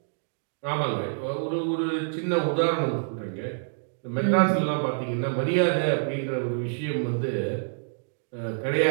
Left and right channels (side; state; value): left; silent; digital silence